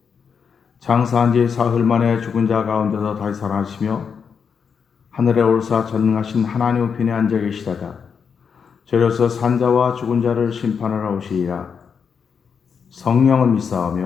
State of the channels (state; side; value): quieter; right; 6.4 dB